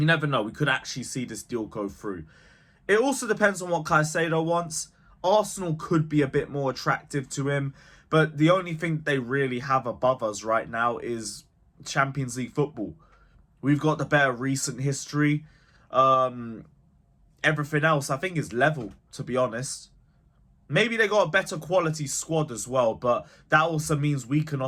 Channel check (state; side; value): identical; both; correlation 1.00